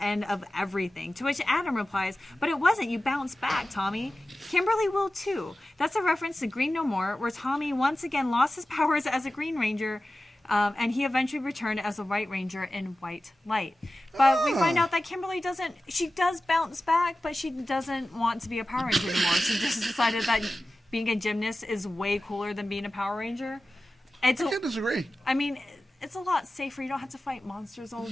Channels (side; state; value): both; normal; correlation 0.95